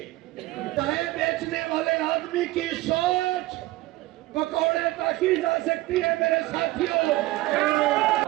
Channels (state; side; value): quieter; left; 18.4 dB